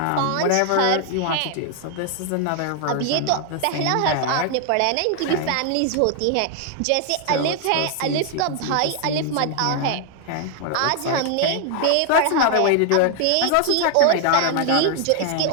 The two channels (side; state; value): both; different; correlation 0.00